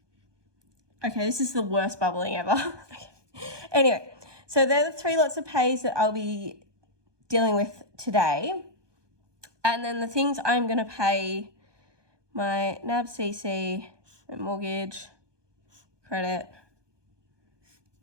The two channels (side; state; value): left; late; 1.2 ms